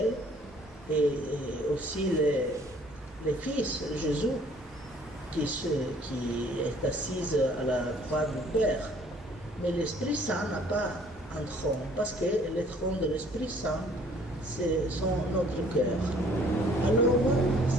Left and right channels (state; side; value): normal; both; correlation 0.57